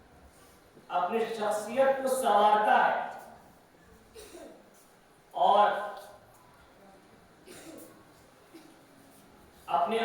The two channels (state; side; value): identical; both; correlation 1.00